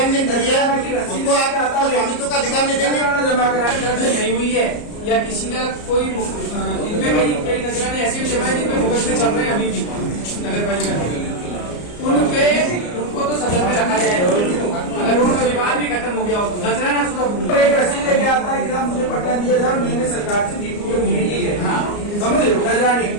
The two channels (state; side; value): late; right; 34 ms